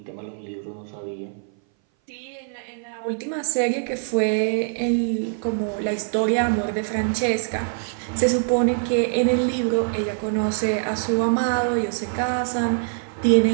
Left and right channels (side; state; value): left; silent; 59 dB below the other